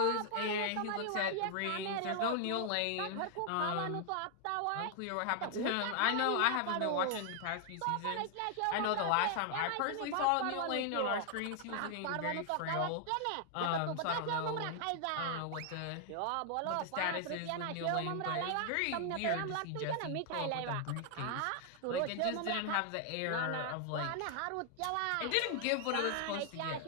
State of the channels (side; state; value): both; different; correlation 0.00